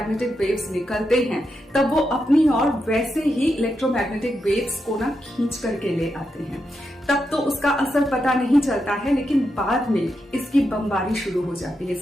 वेव्स निकलते हैं, तब वो अपनी ओर वैसे ही इलेक्ट्रोमैग्नेटिक वेव्स को ना खींच करके ले आते हैं। तब तो उसका असर पता नहीं चलता है, लेकिन बाद में इसकी बमबारी शुरू हो जाती है,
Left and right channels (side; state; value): both; normal; correlation 0.85